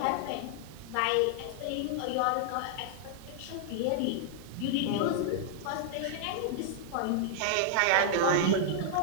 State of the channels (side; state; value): both; different; correlation -0.01